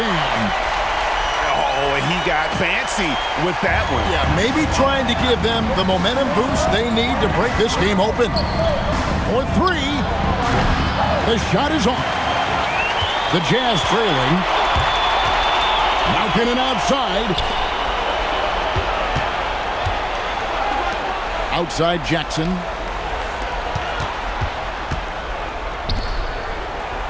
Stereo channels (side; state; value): both; identical; correlation 1.00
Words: Oh, and he got fancy with that one. Yeah, maybe trying to give them the momentum boost they need to break this game open. For 3. The shot is off. The Jazz trailing. Markkanen outside. Outside Jackson.